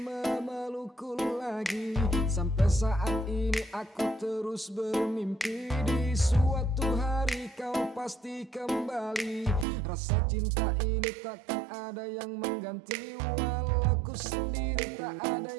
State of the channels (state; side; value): drops out; left; at 9.7 s